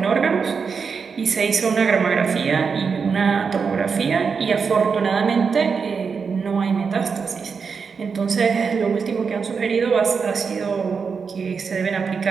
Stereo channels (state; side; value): quieter; left; 5.6 dB